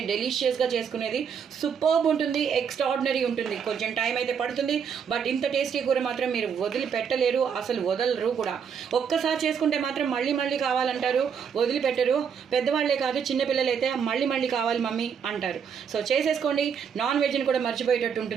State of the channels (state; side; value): quieter; left; 7.1 dB